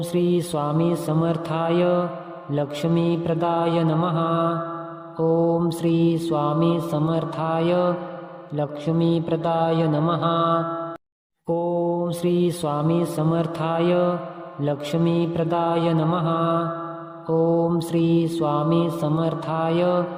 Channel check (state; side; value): identical; both; correlation 1.00